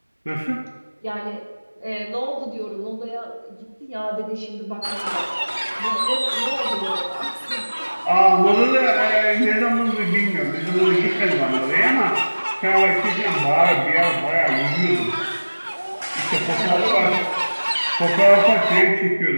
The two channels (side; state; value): both; inverted; correlation -1.00